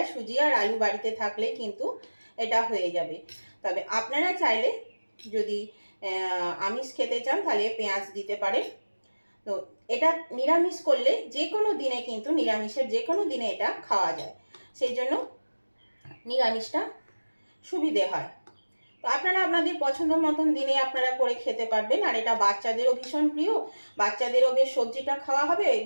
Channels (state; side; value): inverted; both; correlation -1.00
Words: সুজি আর আলু বাড়িতে থাকলে কিন্তু এটা হয়ে যাবে। তবে আপনারা চাইলে যদি আমিষ খেতে চান তাহলে পেঁয়াজ দিতে পারেন। তো এটা নিরামিষ করলে যে কোনো দিনে, কিন্তু নিরামিষের যে কোনো দিনে এটা খাওয়া যায়, সেই জন্য নিরামিষটা সুবিধে হয়। তো আপনারা আপনাদের পছন্দ মতন দিনে আপনারা করে খেতে পারবেন। আর এটা বাচ্চাদেরও ভীষণ প্রিয়, বাচ্চাদেরও বেশ সবজিটা খাওয়া হবে।